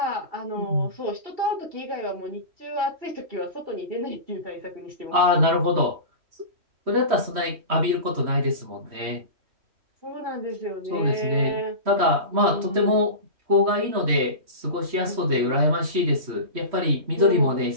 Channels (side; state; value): left; late; 3.1 ms